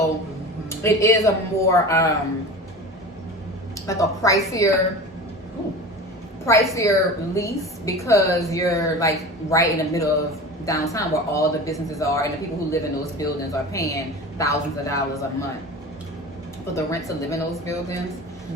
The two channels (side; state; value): both; normal; correlation 0.34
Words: it is a more like a pricier lease because you're like right in the middle of downtown where all the businesses are, and the people who live in those buildings are paying thousands of dollars a month for the rent to live in those buildings.